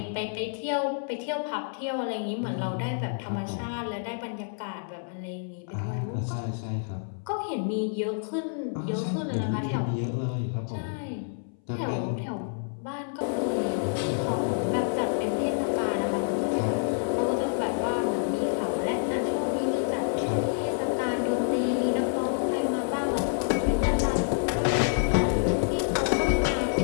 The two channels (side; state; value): right; silent; 59 dB below the other